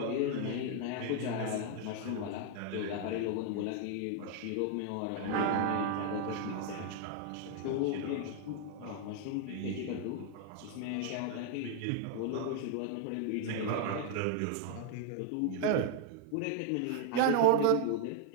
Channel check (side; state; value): both; different; correlation 0.00